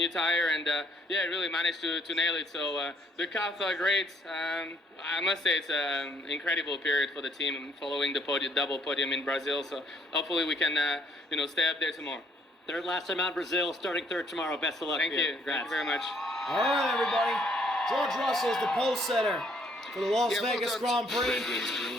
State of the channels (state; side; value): normal; both; correlation 0.66